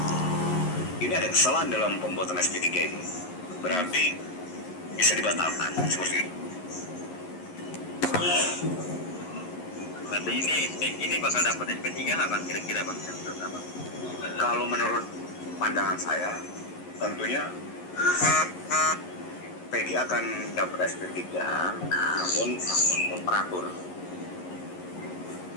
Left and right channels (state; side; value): late; right; 11 ms